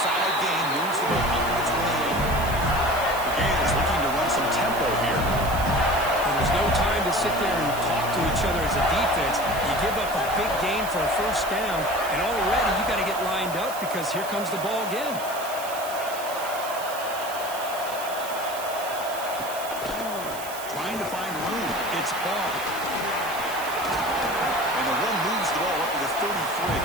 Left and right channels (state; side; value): noise; right; hiss, 12 dB below the sound